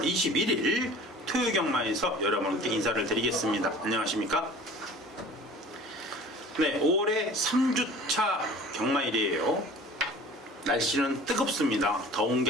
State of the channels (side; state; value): both; normal; correlation 0.44